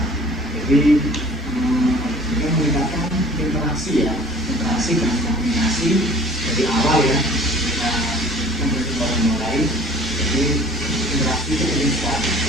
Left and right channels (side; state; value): both; normal; correlation 0.48